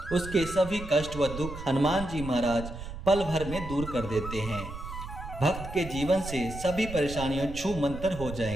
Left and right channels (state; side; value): noise; right; rumble, 10 dB below the sound